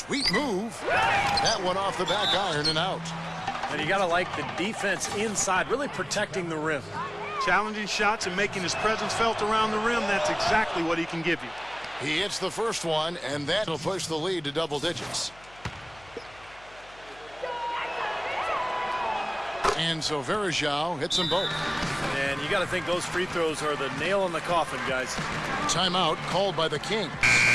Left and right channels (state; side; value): noise; left; hum, 25 dB below the sound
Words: move. That one off the back iron and out. And you got to like the defense inside, really protecting the rim. Challenging shots and making his presence felt around the rim, that's exactly what he can give you. He hits the first one, and that will push the lead to double digits. And so Verajao hits them both. And you got to think those free throws are the nail in the coffin, guys. Timeout called by the Kings.